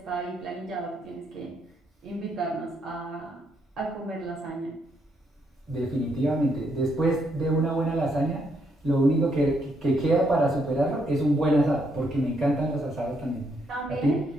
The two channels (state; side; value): normal; both; correlation 0.75